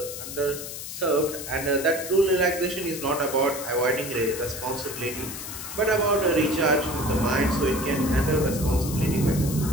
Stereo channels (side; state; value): left; noise; hiss, 9 dB below the sound